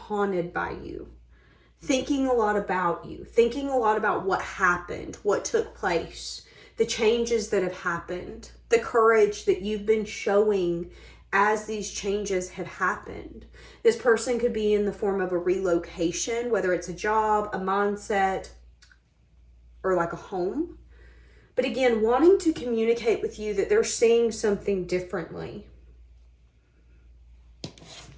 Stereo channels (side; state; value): both; identical; correlation 1.00